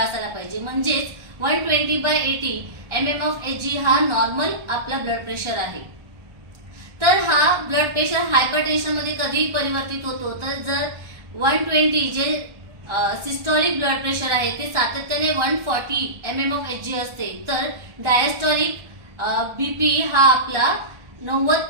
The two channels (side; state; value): left; late; 1.3 ms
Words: पाहिजे, म्हणजेच 120/80 mmHg हा नॉर्मल आपला ब्लड प्रेशर आहे। तर हा ब्लड प्रेशर हायपरटेन्शन मध्ये कधी परिवर्तित होतो, तर जर 120 जे सिस्टोलिक ब्लड प्रेशर आहे ते सातत्याने 140 mmHg असते, तर डायस्टोलिक बीपी हा आपला